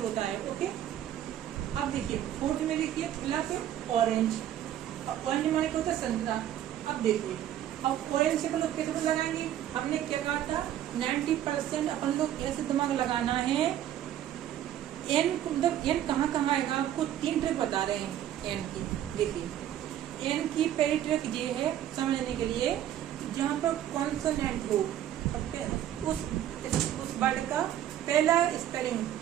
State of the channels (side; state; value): left; quieter; 11.5 dB